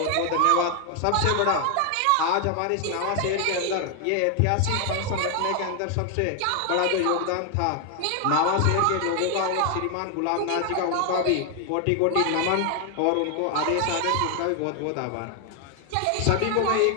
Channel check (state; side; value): different; both; correlation 0.00